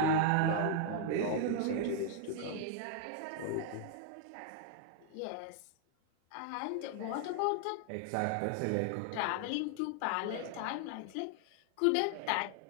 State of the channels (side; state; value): both; different; correlation 0.00